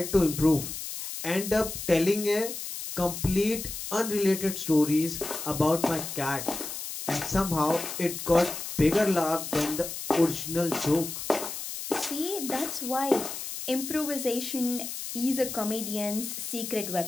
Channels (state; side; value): noise; left; hiss, 7 dB below the sound